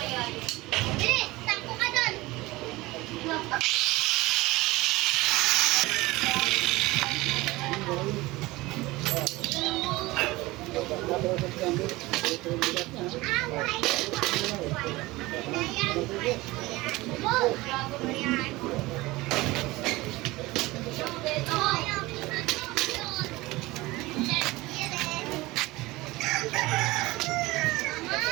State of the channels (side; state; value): left; quieter; 20.4 dB